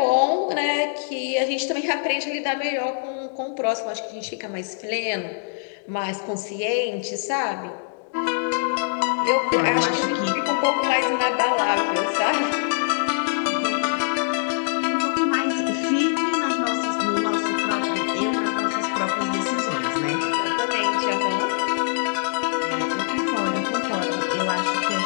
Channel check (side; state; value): right; silent; digital silence